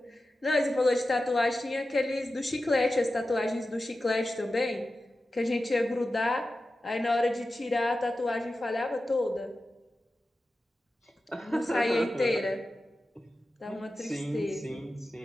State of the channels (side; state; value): both; normal; correlation 0.93